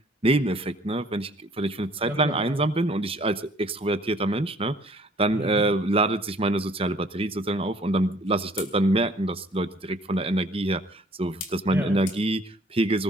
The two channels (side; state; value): both; normal; correlation 0.57